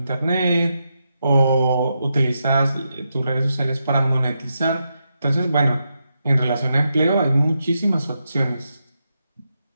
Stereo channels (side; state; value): both; inverted; correlation -0.85